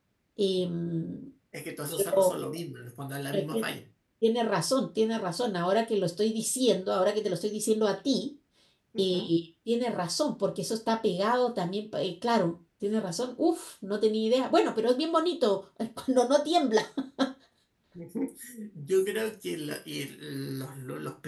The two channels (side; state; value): both; identical; correlation 1.00